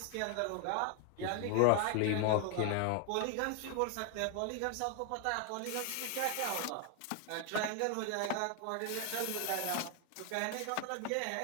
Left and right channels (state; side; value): different; both; correlation 0.00